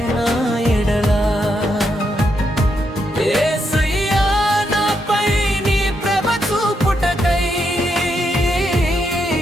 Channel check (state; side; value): normal; both; correlation 0.80